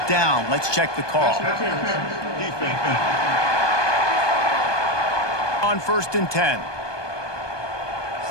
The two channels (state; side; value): late; right; 1.2 ms